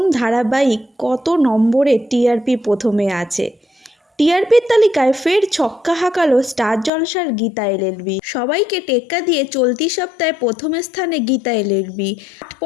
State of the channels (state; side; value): drops out; right; at 6.9 s